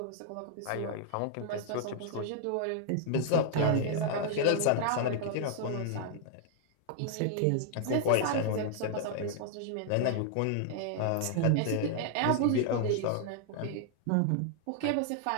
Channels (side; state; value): both; different; correlation 0.00